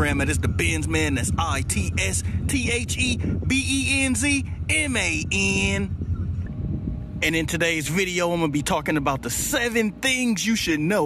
That is the Benz Man. That's ITSTHEBENZMAN. And in today's video, I'm gonna be talking about the 7 things you should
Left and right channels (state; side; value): identical; both; correlation 1.00